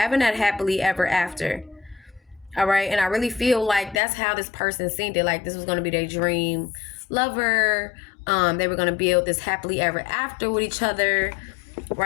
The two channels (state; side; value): drops out; right; at 4.0 s